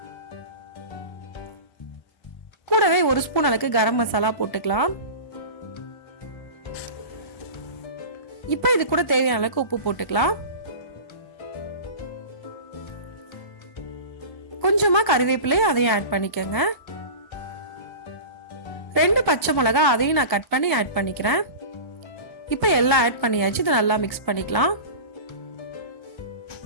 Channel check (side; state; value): right; late; 1.0 ms